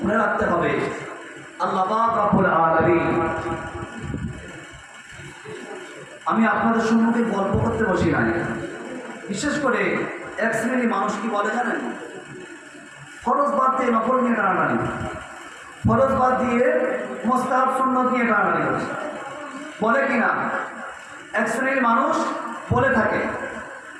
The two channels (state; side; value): identical; both; correlation 1.00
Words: রাখতে হবে আল্লাহ পাক রব্বুল আলামিন, আমি আপনাদের সম্মুখে গল্প করতে বসি নাই। বিশেষ করে এক শ্রেণী মানুষ কি বলে জানেন, ফরজ বাদ দিয়ে নফল নিয়ে টানাটানি, ফরজ বাদ দিয়ে মুস্তাহাব সুন্নত নিয়ে টানাটানি করছে, বলে কিনা এক শ্রেণীর মানুষ বলে থাকে